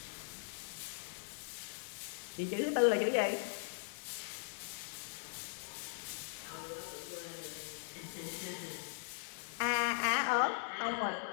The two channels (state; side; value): silent; right; digital silence